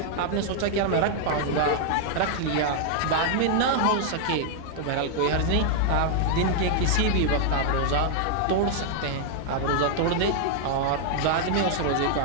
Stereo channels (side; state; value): both; different; correlation 0.00